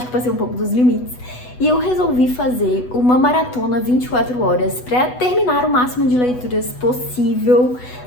que passei um pouco dos limites. E eu resolvi fazer uma maratona 24 horas para terminar o máximo de leituras possível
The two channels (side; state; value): right; late; 8.1 ms